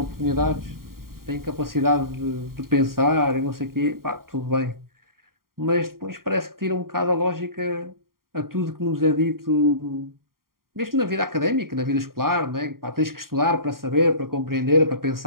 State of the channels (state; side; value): late; left; 0.92 ms